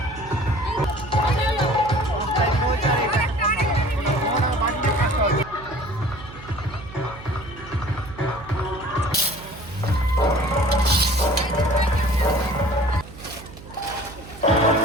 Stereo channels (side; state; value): right; noise; hum, 17 dB below the sound